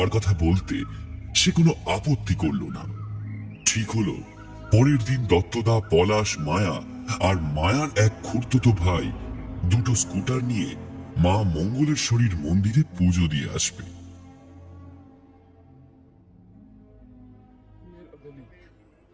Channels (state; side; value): identical; both; correlation 1.00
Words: কথা বলতে সে কোনো আপত্তি করল না। ঠিক হলো, পরের দিন দত্তদা, পলাশ, মায়া আর মায়ার এক খুড়তুতো ভাই দুটো স্কুটার নিয়ে মা মঙ্গলেশ্বরীর মন্দিরে পুজো দিয়ে আসবে।